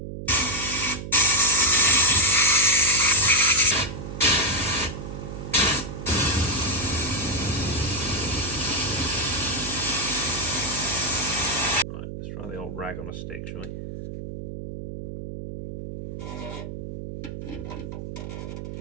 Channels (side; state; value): right; noise; hum, 8 dB below the sound